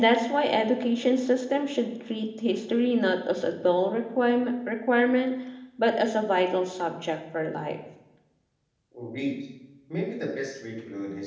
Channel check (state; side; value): identical; both; correlation 1.00